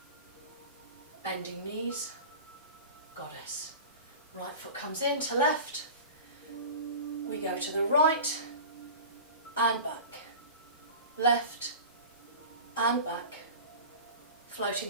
bending knees, goddess. Right foot comes in to left, we go to the right and back, left and back,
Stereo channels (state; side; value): inverted; both; correlation -0.34